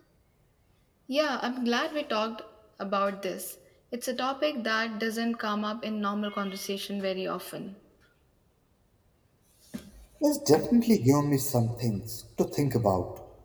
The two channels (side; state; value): both; identical; correlation 1.00